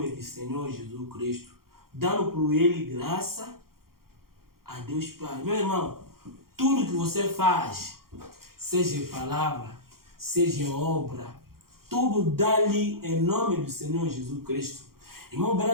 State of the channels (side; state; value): left; late; 0.93 ms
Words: do Senhor Jesus Cristo, dando por Ele graça a Deus Pai. Meu irmão, tudo que você faz, seja em palavra, seja em obra, tudo dá-lhe em nome do Senhor Jesus Cristo. Irmão